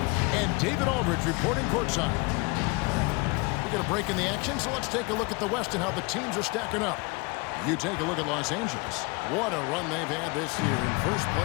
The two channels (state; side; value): quieter; right; 27.3 dB